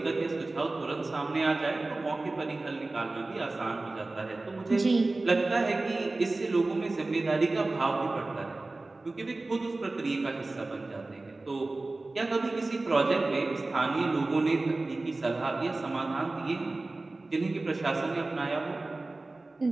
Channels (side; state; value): left; quieter; 3.2 dB